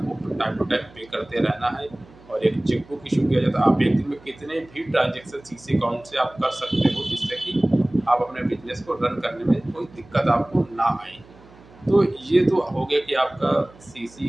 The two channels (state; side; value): noise; right; hum, 24 dB below the sound